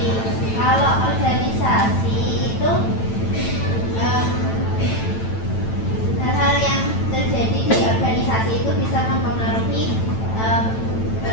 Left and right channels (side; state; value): right; late; 9.1 ms